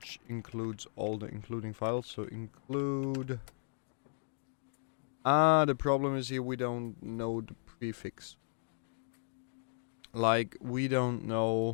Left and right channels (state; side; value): silent; right; digital silence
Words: includes all the including files. So include. The problem is here we don't know the prefix. Like, we don't